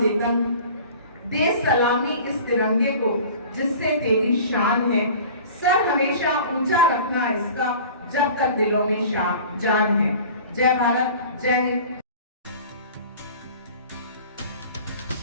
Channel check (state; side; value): inverted; both; correlation -0.42